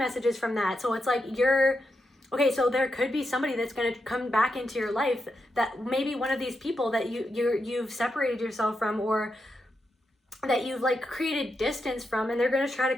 from that. So it's like okay, so there could be somebody that's going to come back into your life, that maybe one of these people that you've separated yourself from, or that you've like created distance from, and they're going to try to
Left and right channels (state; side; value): normal; both; correlation 0.85